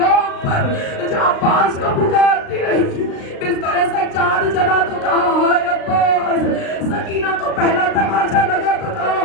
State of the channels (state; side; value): late; right; 36 ms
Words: پر جو عباس کو پکارتی رہی، بستر سجاد جلا تو کہا ہائے عباس. سکینہ کو پہلا تماشا لگا تو کہا